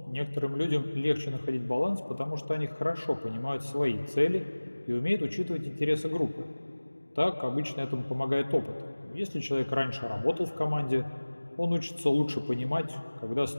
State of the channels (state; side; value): inverted; both; correlation -1.00